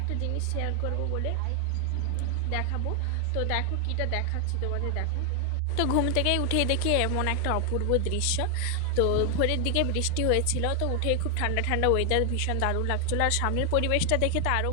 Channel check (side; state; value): both; different; correlation 0.00